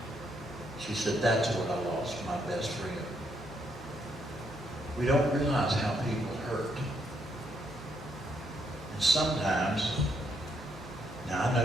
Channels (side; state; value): both; normal; correlation 0.75